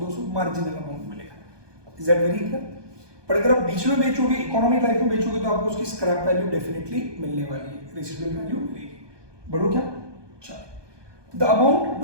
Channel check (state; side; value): late; left; 1.2 ms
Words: मार्जिनल अमाउंट मिलेगा। Is that very clear? पर अगर आप बीच में बेचोगे, इकोनॉमिक लाइफ में बेचोगे, तो आपको उसकी स्क्रैप वैल्यू डेफिनेटली मिलने वाली है, रेसिडुअल वैल्यू मिलेगी। बढ़ो क्या, चलो। The amount to